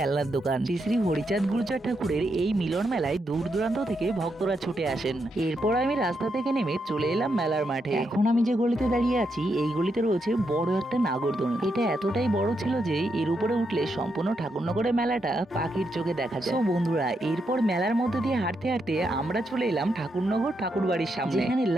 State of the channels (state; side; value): normal; both; correlation 0.81